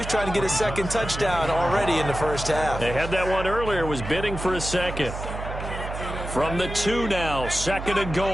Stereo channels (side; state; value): right; noise; hum, 7 dB below the sound